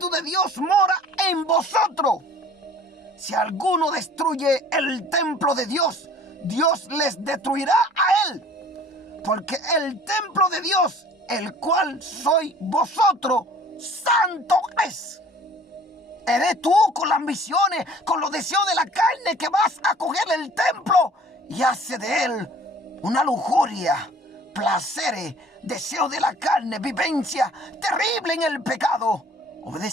de Dios mora en vosotros? Si alguno destruye el templo de Dios, Dios les destruirá a él. Porque el templo de Dios, el cual sois vosotros, santo es. Eres tú con las ambiciones, con los deseos de la carne, que vas a coger el templo y hace de él una lujuria, placeres, deseos de la carne, vivencia terrible en el pecado,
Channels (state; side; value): normal; both; correlation 0.50